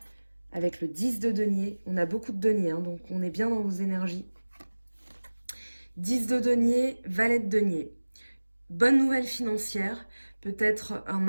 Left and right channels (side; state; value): both; inverted; correlation -1.00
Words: avec le 10 de denier. On a beaucoup de deniers, hein, donc on est bien dans vos énergies. 10 de denier, valet de denier. Bonne nouvelle financière, peut-être un